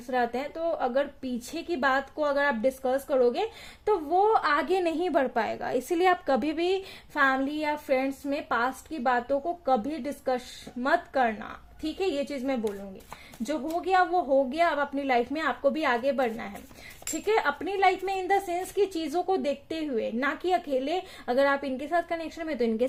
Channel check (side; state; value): both; identical; correlation 1.00